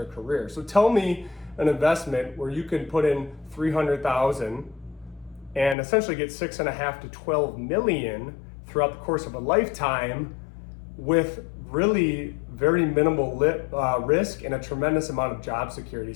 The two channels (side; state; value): right; drops out; at 5.8 s